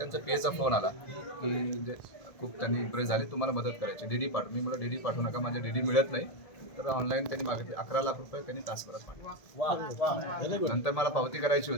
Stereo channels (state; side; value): late; right; 1.7 ms